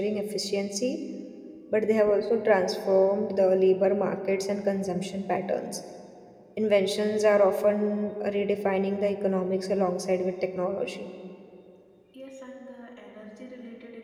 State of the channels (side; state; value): both; identical; correlation 1.00